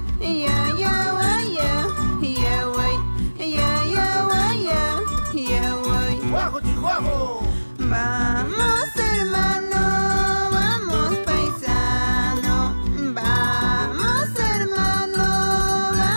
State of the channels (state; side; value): inverted; both; correlation -1.00